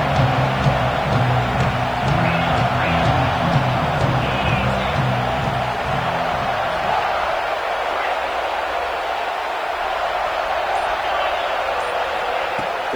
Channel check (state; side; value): noise; right; hiss, 28 dB below the sound